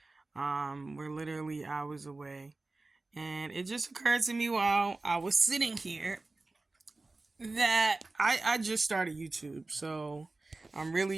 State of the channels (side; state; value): left; quieter; 3.3 dB